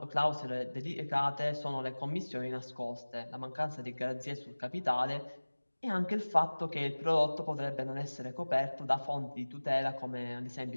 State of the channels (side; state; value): both; inverted; correlation -1.00